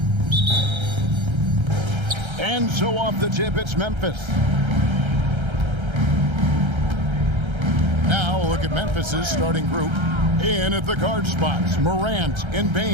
And so off the tip, it's Memphis. Now look at Memphis's starting group. In at the guard spots, Morant and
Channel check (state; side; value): late; left; 1.3 ms